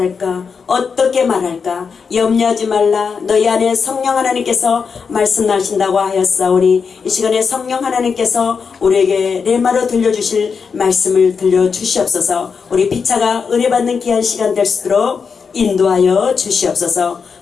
어떻게 말할까? 염려하지 말라. 너희 안에 성령 하나님께서 말씀하신다고 하였사오니 이 시간에 성령 하나님께서 우리에게 레마로 들려주실 말씀을 들려주시옵소서. 우리 피차가 은혜받는 귀한 시간 될 수 있도록 인도하여 주시옵소서.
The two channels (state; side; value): quieter; right; 5.7 dB